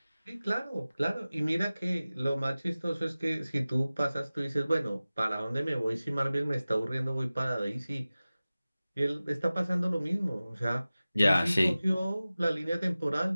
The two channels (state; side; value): inverted; both; correlation -0.97